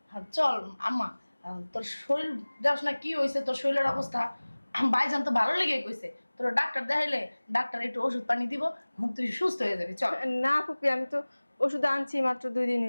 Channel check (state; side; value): inverted; both; correlation -1.00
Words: হ্যাঁ, চল আম্মা, তোর শরীর দেখ না কি হয়েছে, তোর শরীরের অবস্থা। ভাইজান তো ভালো লেগে কইছে, তোর ডাক্তার দেখাইলে ডাক্তার একটু ওষুধ পানি দিব, তুই সুস্থ হয়ে যাবি। চল। না ফুপি, আমি তো ওষুধ আনছি মাত্র 2 দিন